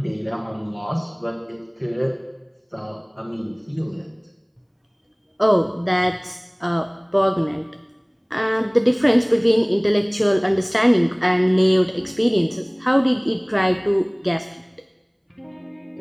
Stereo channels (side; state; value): both; identical; correlation 1.00